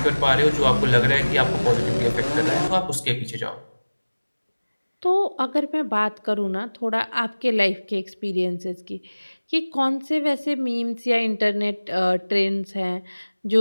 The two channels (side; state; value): both; inverted; correlation -1.00